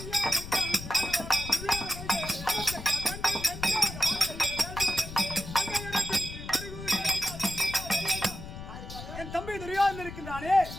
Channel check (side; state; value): left; noise; rumble, 11 dB below the sound